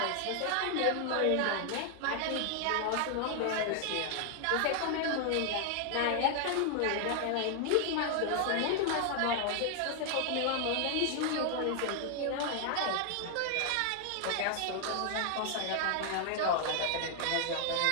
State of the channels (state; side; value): different; both; correlation 0.00